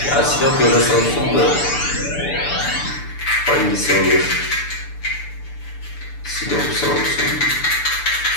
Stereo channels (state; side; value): late; right; 6.9 ms